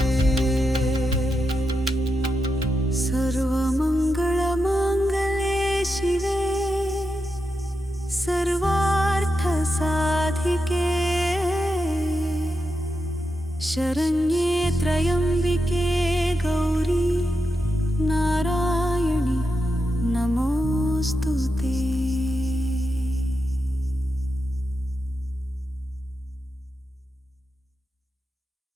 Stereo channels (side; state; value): both; normal; correlation 0.87